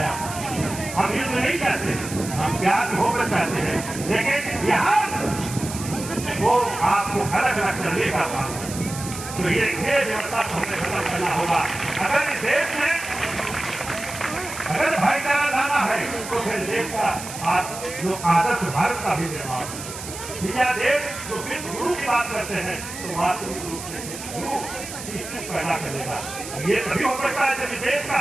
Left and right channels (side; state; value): right; noise; hiss, 10 dB below the sound